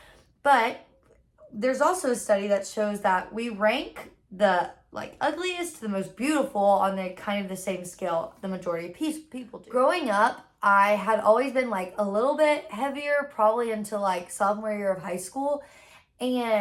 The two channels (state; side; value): identical; both; correlation 1.00